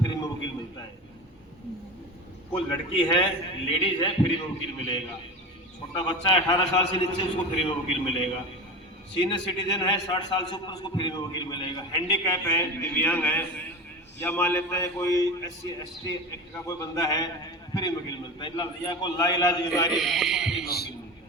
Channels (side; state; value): both; normal; correlation 0.27